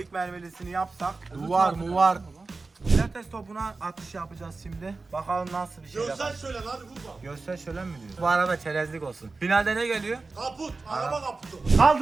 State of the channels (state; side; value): quieter; left; 3.8 dB